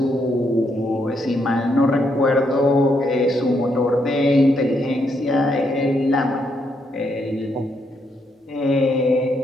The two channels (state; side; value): normal; both; correlation 0.76